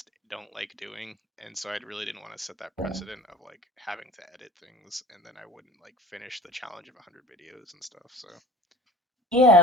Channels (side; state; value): both; normal; correlation 0.45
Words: don't like doing. And so I really didn't want to set that precedent of like having to edit things and then I wouldn't like finish the challenge of 100 videos and stuff. So,